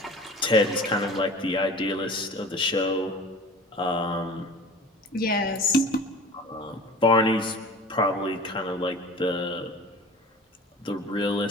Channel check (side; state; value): both; normal; correlation 0.40